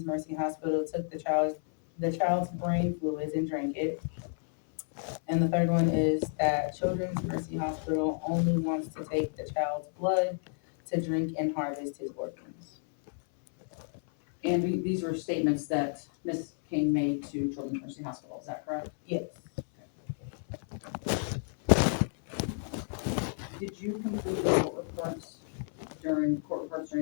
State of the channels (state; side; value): silent; right; 57 dB below the other